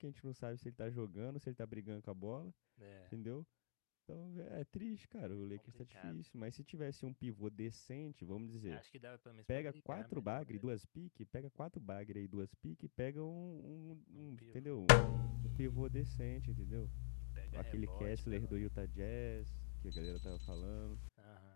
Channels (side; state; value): right; silent; digital silence